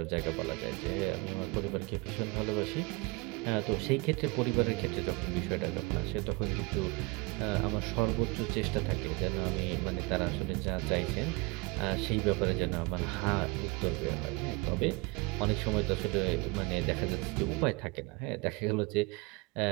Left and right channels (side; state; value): left; quieter; 25.9 dB